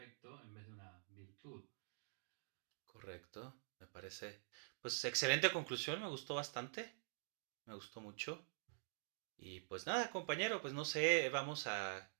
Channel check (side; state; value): left; silent; digital silence